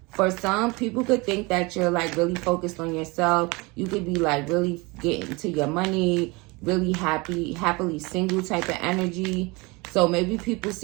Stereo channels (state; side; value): quieter; left; 25.8 dB